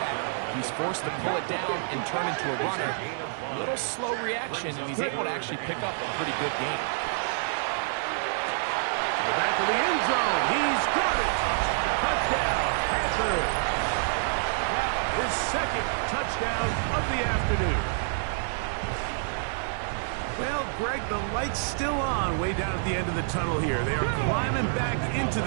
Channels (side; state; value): left; silent; digital silence